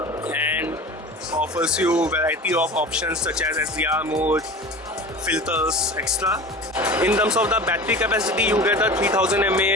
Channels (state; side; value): normal; both; correlation 0.35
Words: and offers you a variety of options such as SDR mode, filters, extra. In terms of the battery capacity, you get a 3000